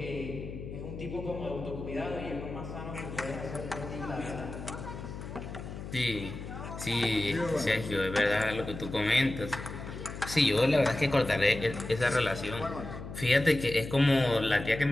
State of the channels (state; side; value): noise; left; hum, 9 dB below the sound